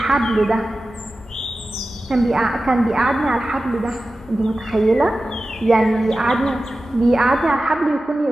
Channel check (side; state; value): both; normal; correlation 0.94